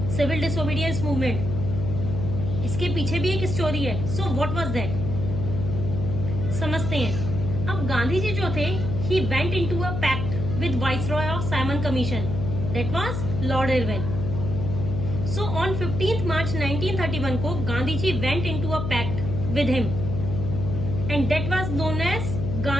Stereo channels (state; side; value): noise; left; hum, 3 dB below the sound